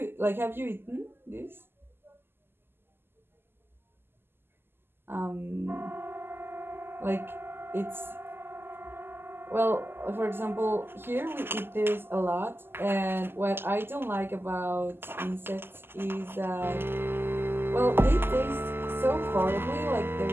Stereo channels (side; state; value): left; late; 0.11 ms